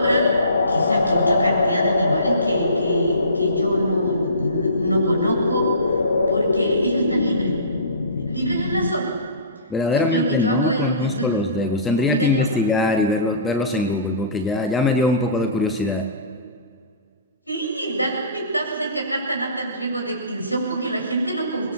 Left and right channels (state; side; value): inverted; both; correlation -0.38